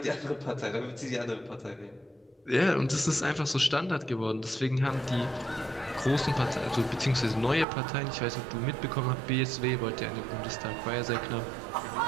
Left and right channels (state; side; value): drops out; left; at 7.7 s